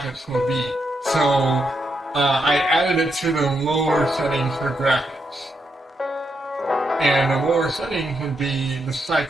will be. So I added it to the lower settings for graphics. And the lower settings would be the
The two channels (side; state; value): both; normal; correlation 0.81